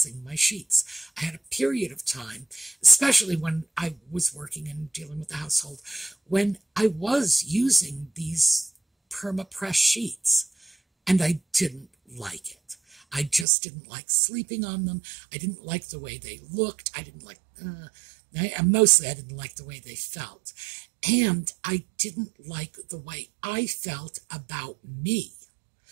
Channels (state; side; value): drops out; left; at 13.5 s